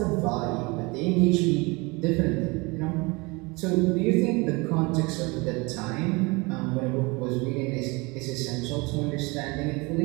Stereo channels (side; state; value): left; quieter; 26.2 dB